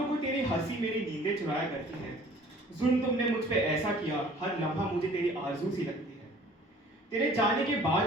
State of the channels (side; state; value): both; normal; correlation 0.51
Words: को तेरी हंसी मेरी नींदें चुराया करती है। जुल्म तुमने मुझ पे ऐसा किया, हर लम्हा मुझे तेरी आरज़ू सी लगती है। तेरे जाने के